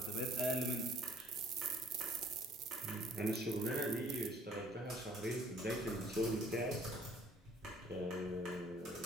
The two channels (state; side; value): normal; both; correlation 0.57